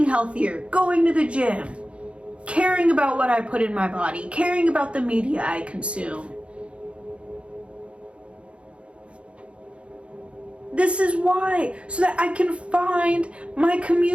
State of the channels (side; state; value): left; late; 0.060 ms